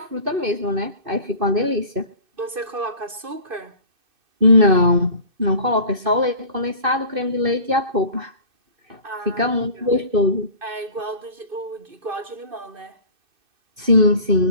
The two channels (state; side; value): late; left; 2.6 ms